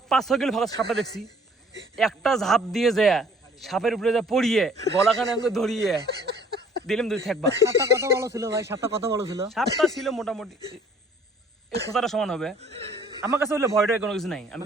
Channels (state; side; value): normal; both; correlation 0.56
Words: 5-6 কিলো ফাঁকা সাপটা দেখছি, একটা ঝাঁপ দিয়ে যায় সাপের উপরে যা পড়িয়ে গলাখানে আমাকে ধরিয়ে দিলাম, দুই থাকবা। সাপটা কত বড় ছিল ভাই? সাপটা কত বড় ছিল? সাপটা ছিল মোটামুটি এই খোঁচাটা সমান হবে। আমার কাছে হলে ভয়টা কোনো কিছু নাই, আমি